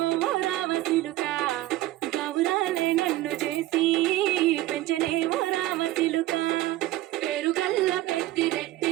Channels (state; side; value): quieter; left; 15.9 dB